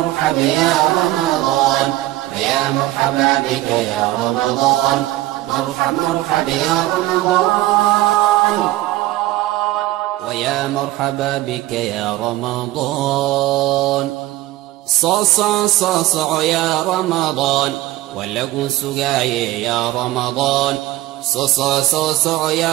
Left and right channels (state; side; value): quieter; left; 16.5 dB